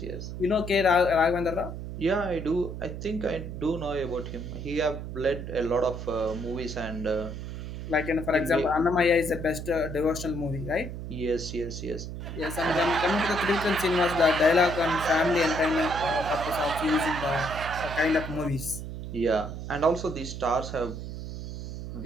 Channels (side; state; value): right; noise; hum, 8 dB below the sound